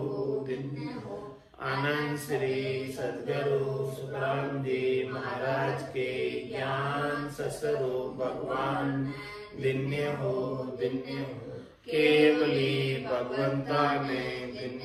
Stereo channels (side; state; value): both; identical; correlation 1.00